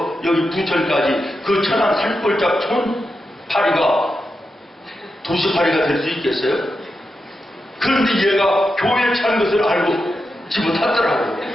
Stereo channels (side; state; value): both; normal; correlation 0.88